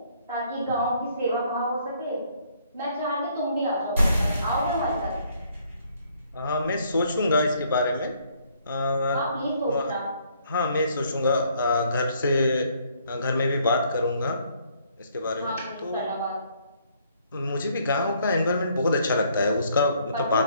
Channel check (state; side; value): inverted; both; correlation -0.66